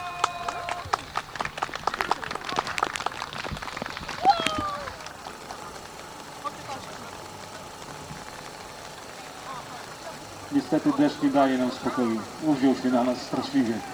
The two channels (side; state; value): left; noise; hiss, 28 dB below the sound